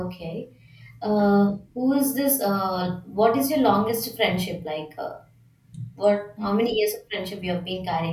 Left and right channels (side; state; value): both; identical; correlation 1.00